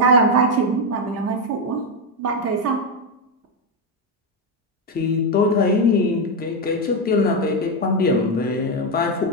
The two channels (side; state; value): both; normal; correlation 0.06